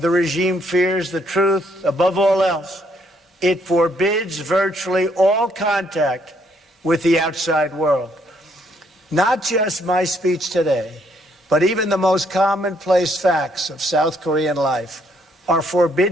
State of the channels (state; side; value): normal; both; correlation 0.70